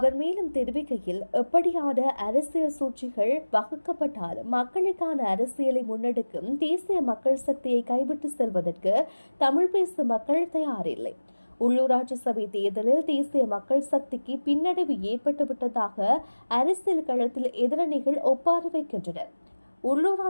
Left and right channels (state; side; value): inverted; both; correlation -1.00